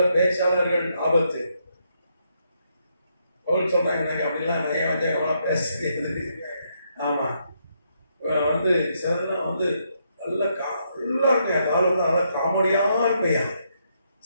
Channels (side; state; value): both; inverted; correlation -0.77